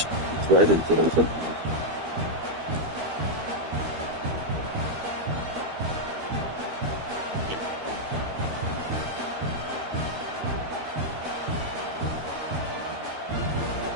Right into the foot.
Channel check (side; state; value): left; late; 12 ms